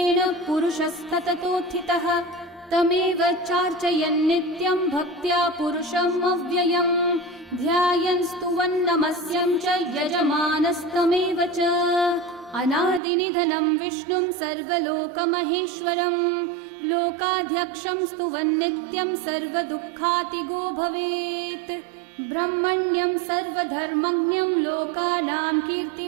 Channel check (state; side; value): drops out; left; at 13.0 s